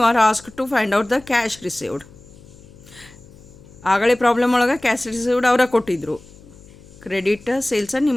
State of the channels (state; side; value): noise; left; hum, 23 dB below the sound